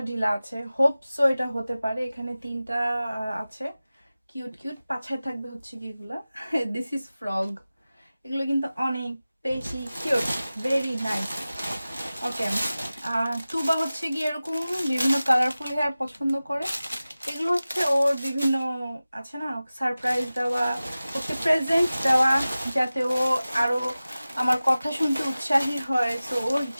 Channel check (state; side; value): inverted; both; correlation -0.96